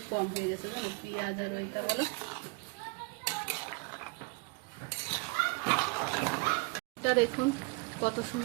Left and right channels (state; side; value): quieter; left; 29.3 dB